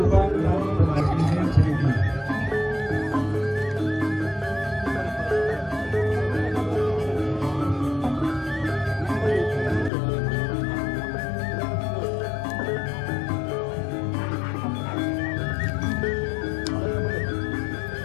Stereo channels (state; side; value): drops out; right; at 9.9 s